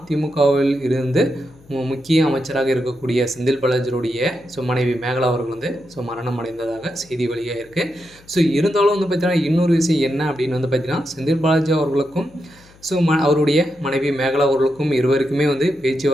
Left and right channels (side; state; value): left; noise; hum, 26 dB below the sound